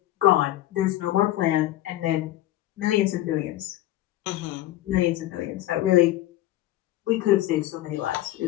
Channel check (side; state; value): right; quieter; 14.8 dB